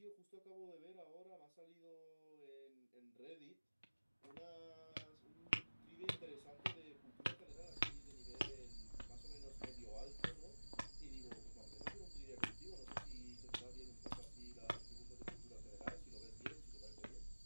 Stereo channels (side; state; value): both; inverted; correlation -1.00